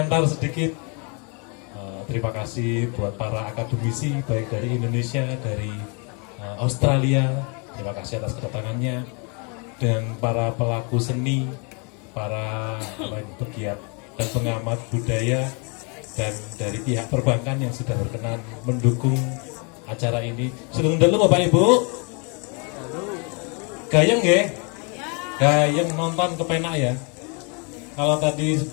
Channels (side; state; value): right; quieter; 34.6 dB